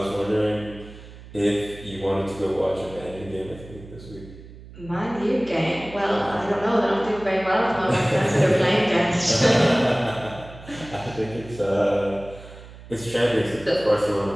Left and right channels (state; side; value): noise; right; hum, 17 dB below the sound